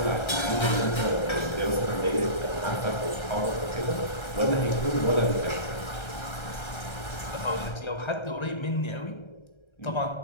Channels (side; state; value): right; late; 1.3 ms